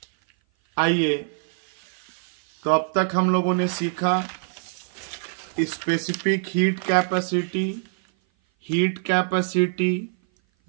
आइए, तो अब तक हम लोगों ने सीखा specific heat capacity,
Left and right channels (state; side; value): silent; left; 56 dB below the other